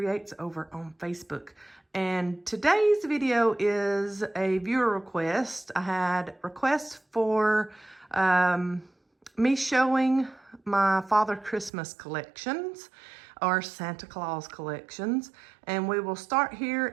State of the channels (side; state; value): left; drops out; at 11.7 s